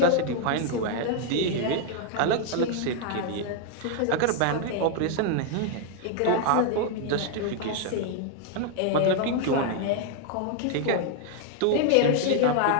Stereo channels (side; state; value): both; different; correlation 0.00